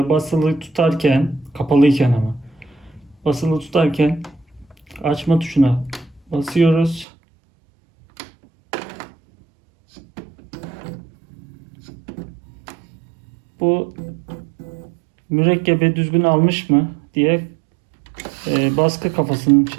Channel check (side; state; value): left; drops out; at 7.1 s